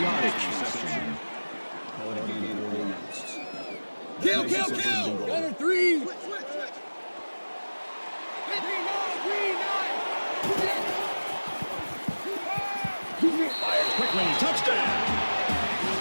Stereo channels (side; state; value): both; inverted; correlation -1.00